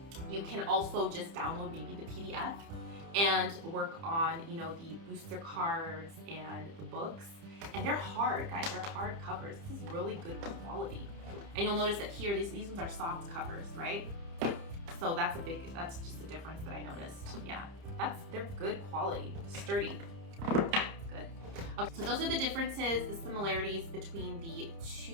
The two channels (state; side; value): late; left; 30 ms